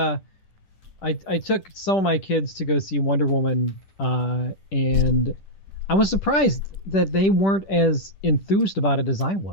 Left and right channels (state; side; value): late; right; 10 ms